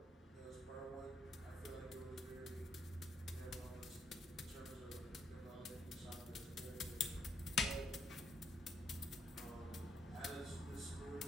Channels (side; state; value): both; normal; correlation 0.73